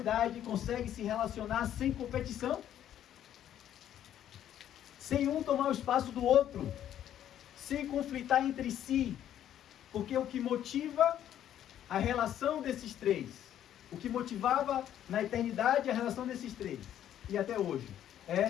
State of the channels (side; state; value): right; quieter; 10.9 dB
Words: conseguem se relacionar sem competição, sem um tomar o espaço do outro, sem conflitar entre si, porque o que motiva a relação desses 3, o que motivava na eternidade a relação desses 3, e até hoje,